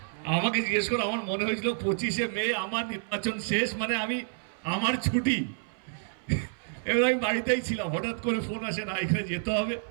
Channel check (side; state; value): left; silent; 59 dB below the other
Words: আমাকে জিজ্ঞেস করে আমার মনে হয়েছিল 25শে মে আমার নির্বাচন শেষ, মানে আমার ছুটি। এবার আমি বাড়িতেই ছিলাম, হঠাৎ করে ফোন আসে না এখানে যেতে হবে।